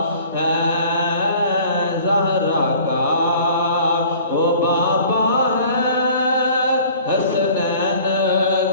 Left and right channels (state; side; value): inverted; both; correlation -0.49